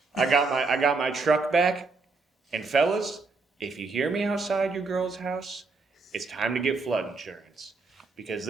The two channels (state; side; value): quieter; left; 4.0 dB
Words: I got my truck back, and fellas, if you hear me outside your girl's house, it's time to get flood insurance because